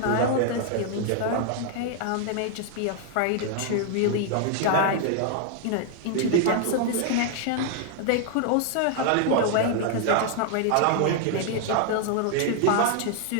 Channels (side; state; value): both; different; correlation 0.00